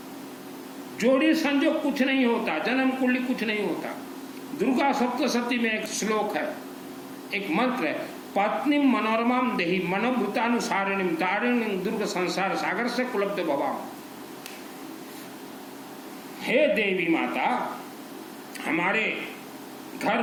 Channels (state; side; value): identical; both; correlation 1.00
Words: जोड़ी संजोग कुछ नहीं होता, जन्म कुंडली कुछ नहीं होता। दुर्गा सप्तशती में एक श्लोक है, एक मंत्र है, पत्नी मनोरमाम देहि मनोभूतानुसारिणीम तारिणीम दुर्ग संसार सागर से कुलब्ध भवाम। हे देवी माता, हमारे घर